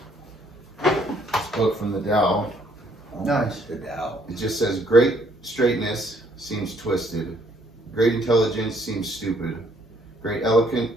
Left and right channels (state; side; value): normal; both; correlation 0.66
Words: this book from the Tao. nice. The Tao. It just says, great straightness seems twisted. Great intelligence seems stupid. Great